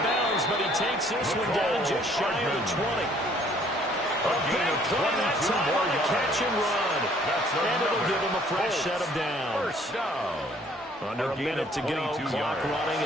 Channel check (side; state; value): both; normal; correlation 0.60